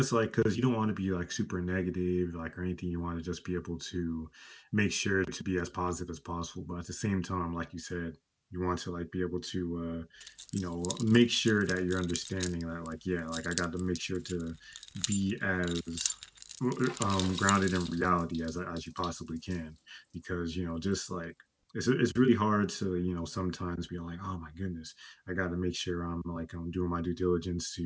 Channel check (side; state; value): both; identical; correlation 1.00